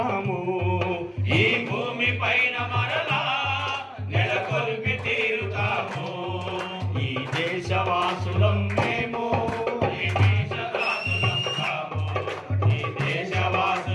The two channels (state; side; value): identical; both; correlation 1.00